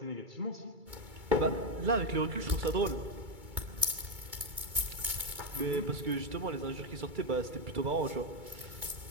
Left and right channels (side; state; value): left; late; 2.3 ms